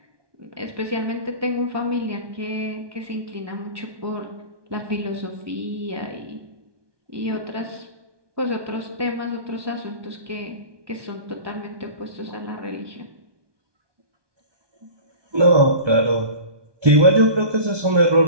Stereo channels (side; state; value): left; late; 1.2 ms